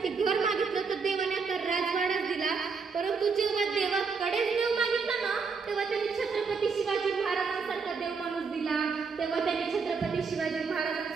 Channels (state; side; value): quieter; left; 5.1 dB